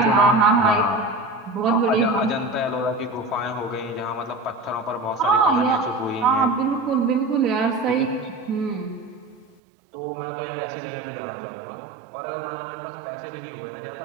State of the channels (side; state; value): left; drops out; at 9.6 s